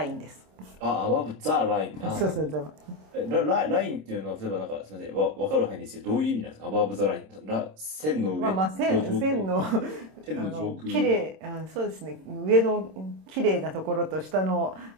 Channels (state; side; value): late; left; 26 ms